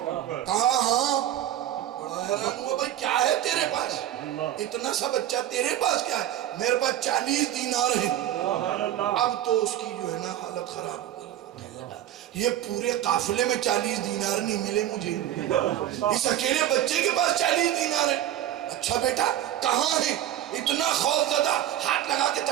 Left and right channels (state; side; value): quieter; left; 12.1 dB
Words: ہاں۔ بڑا حیران ہوا، بھائی کیا ہے تیرے پاس؟ اتنا سا بچہ تیرے پاس کیا ہے؟ میرے پاس 40 دینار ہیں۔ اب تو اس کی جو ہے نا حالت خراب ہو گئی، یہ پورے قافلے میں 40 دینار نہیں ملے مجھے، اس اکیلے بچے کے پاس 40 دینار ہیں۔ اچھا بیٹا کہاں ہے؟ اتنا خوف زدہ ہاتھ لگا کے